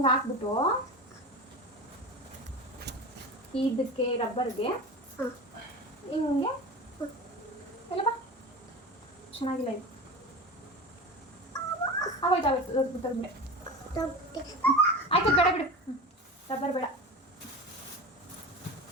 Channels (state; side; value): normal; both; correlation 0.30